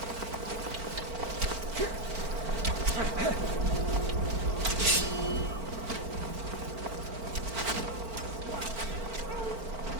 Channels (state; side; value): late; left; 4.4 ms